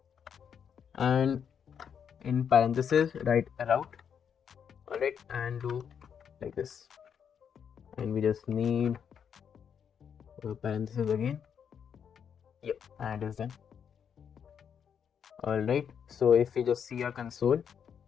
and in parentheses write a route. Alright, and do like this, and we just need parentheses again. Yep, and it is done. Alright, so if we just see our console,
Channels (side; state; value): right; quieter; 7.7 dB